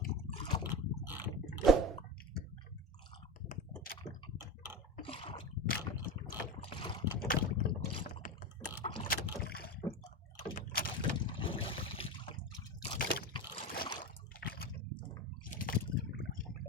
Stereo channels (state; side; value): normal; both; correlation 0.23